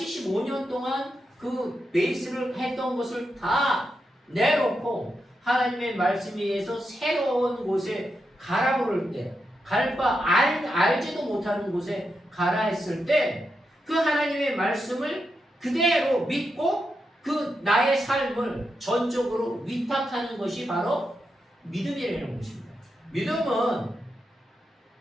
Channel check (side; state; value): both; normal; correlation 0.86